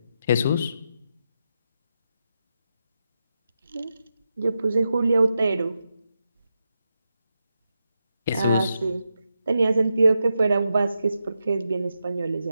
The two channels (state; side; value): inverted; both; correlation -0.87